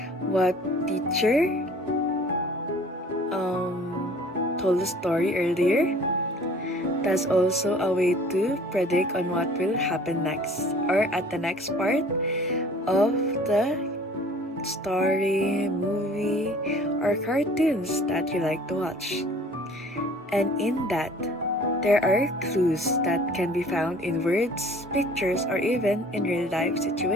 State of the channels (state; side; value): normal; both; correlation 0.50